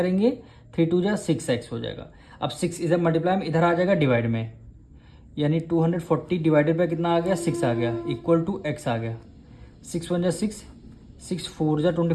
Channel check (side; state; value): both; identical; correlation 1.00